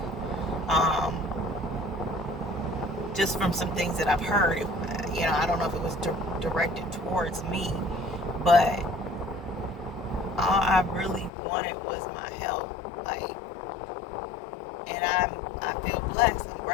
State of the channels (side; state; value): right; drops out; at 11.3 s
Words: Just from some things that I've heard, I don't know if it was directed towards me, but all I really wanted was my health. And I feel blessed. I'm